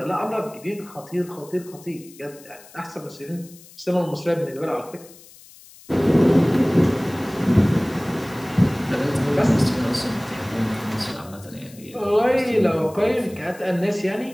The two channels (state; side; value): noise; left; hiss, 22 dB below the sound